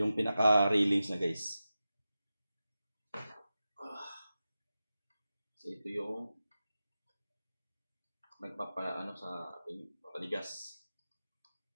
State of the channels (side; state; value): both; inverted; correlation -0.93